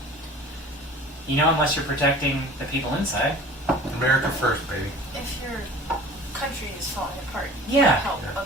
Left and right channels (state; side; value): normal; both; correlation 0.43